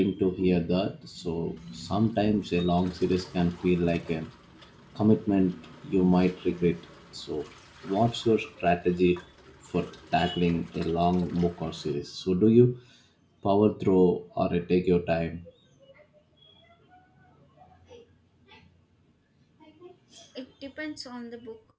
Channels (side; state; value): both; identical; correlation 1.00